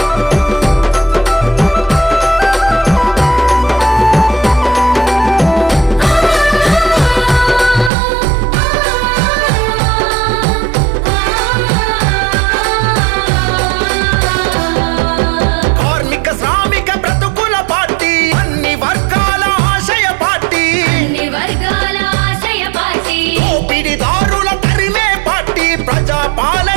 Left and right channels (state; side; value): drops out; left; at 7.9 s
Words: కార్మిక శ్రామిక బ్రతుకుల పార్టీ అన్ని వర్గాల ఆశయ పార్టీ అన్ని వర్గాల ఆశయ పార్టీ దోపిడిదారుల తరిమే పార్టీ ప్రజా